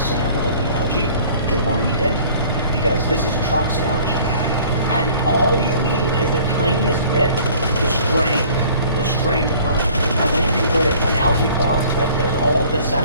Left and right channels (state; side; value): inverted; both; correlation -0.51